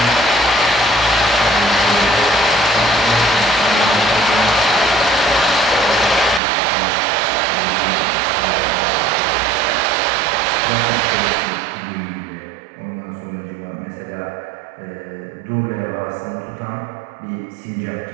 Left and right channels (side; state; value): left; drops out; at 6.4 s